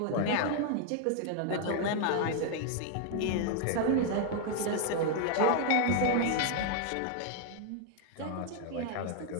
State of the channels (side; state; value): both; different; correlation 0.00